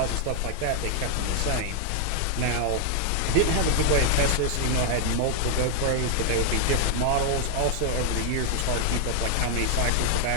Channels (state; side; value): different; both; correlation 0.00